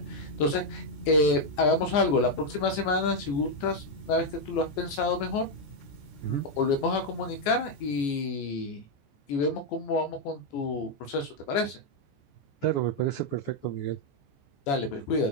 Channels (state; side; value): late; right; 14 ms